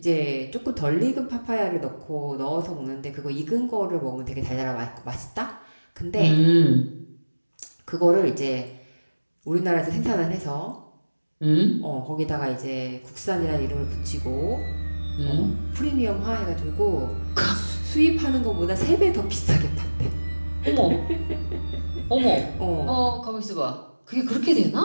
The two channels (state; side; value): inverted; both; correlation -1.00